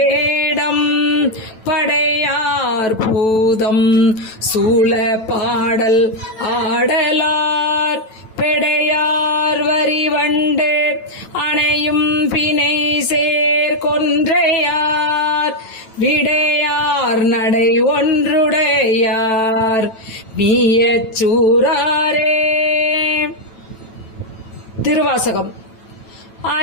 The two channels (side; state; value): right; late; 9.1 ms